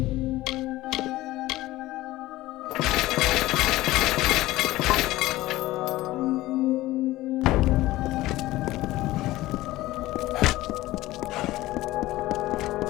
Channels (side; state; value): right; quieter; 17.3 dB